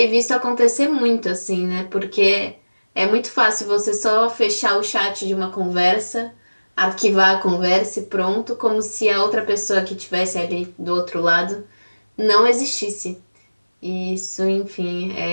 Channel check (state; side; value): inverted; both; correlation -1.00